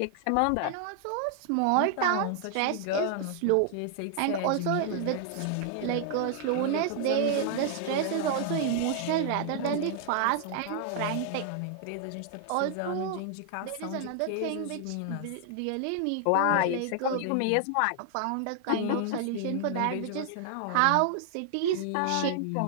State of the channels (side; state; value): both; different; correlation 0.00